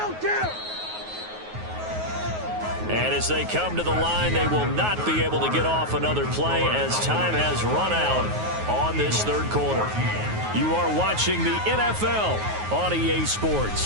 And as they come to the line, they will not be able to get off another play as time has run out on this 3rd quarter. You are watching the NFL on EA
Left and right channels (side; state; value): left; late; 9.4 ms